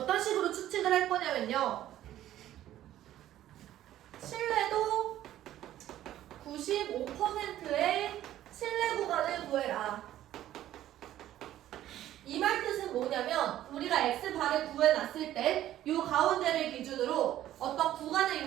식으로 추측을 할 거냐면요. 신뢰도 95%의 신뢰 구간을 구해라. 이 말 뜻은 뭐냐면 우리가 x바를 구해놨을 때 이 가운데를 기준으로 어떤 구간을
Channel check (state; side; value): quieter; left; 12.9 dB